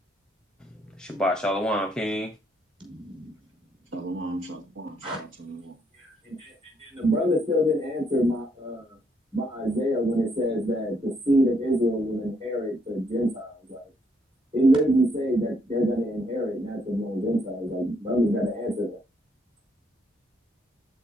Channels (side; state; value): both; normal; correlation 0.72